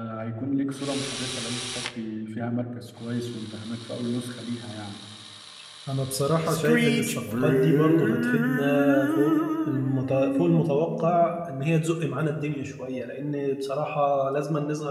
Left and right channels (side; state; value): both; identical; correlation 1.00